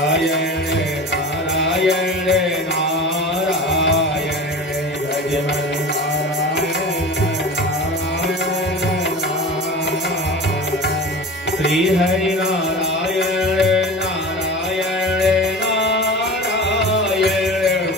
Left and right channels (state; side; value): normal; both; correlation 0.33